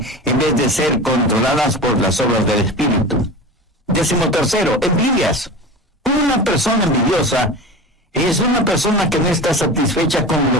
en vez de ser controladas por las obras del Espíritu. Décimo tercero, envidias. Una persona envidiosa es una persona que no está satisfecha con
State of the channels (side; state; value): both; normal; correlation 0.31